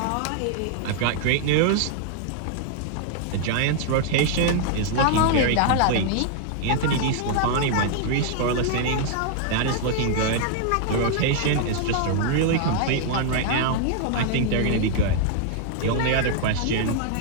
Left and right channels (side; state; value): both; different; correlation 0.00